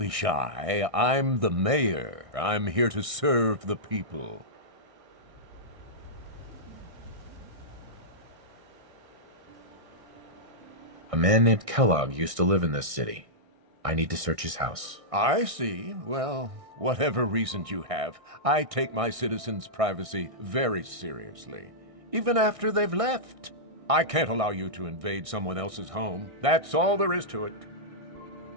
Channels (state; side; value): late; left; 1.6 ms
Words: shy. I'm the mayor. I'm here to serve the people. A man named Kellogg used to live in this city. I need to search his house. I see. Well, whatever reasons you have, I take my citizens' privacy very seriously. Even after they've left. I can't allow you to invade someone else's home. That's all there is to it.